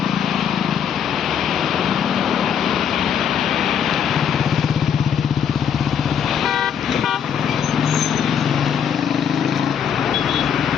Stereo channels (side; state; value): right; quieter; 8.1 dB